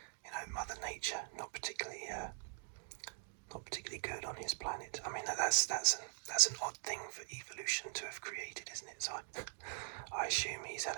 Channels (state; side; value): silent; left; digital silence